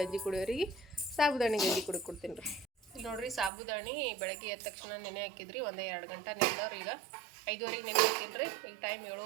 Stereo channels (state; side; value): drops out; left; at 3.5 s